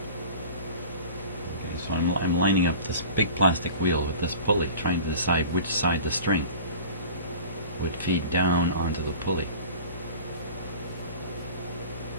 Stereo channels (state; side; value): inverted; both; correlation -0.40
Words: Okay, so I'm lining up this big plastic wheel with this pulley, trying to decide which side the string would feed down onto the pulley.